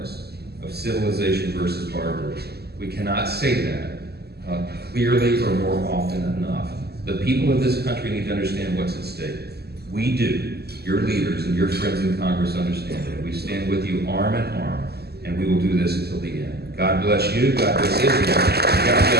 of civilization versus barbarism. We cannot say that clearly or more often enough. The people of this country need to understand what's at stake. We do. Your leaders and your friends in Congress understand it. We stand with you arm in arm, and we will do this until the end. God bless you. God bless Israel. And God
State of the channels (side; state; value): left; late; 0.46 ms